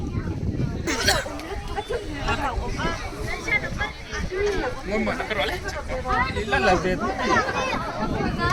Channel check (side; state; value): both; identical; correlation 1.00